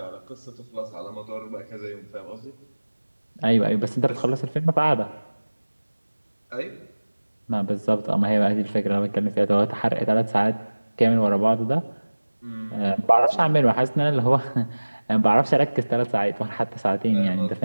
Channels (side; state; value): both; inverted; correlation -1.00